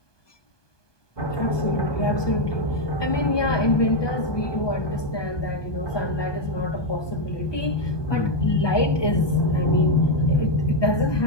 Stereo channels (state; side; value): late; right; 1.2 ms